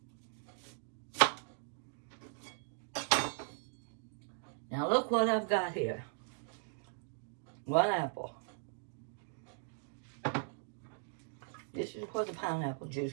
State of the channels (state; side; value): silent; left; digital silence